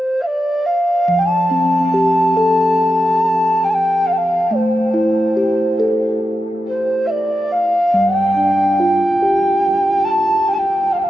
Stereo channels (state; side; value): normal; both; correlation 0.89